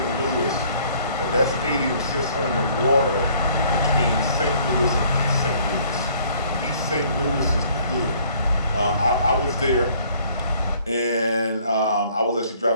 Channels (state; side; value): inverted; both; correlation -0.59